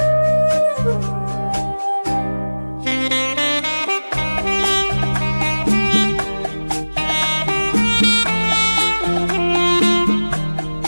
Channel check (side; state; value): both; inverted; correlation -1.00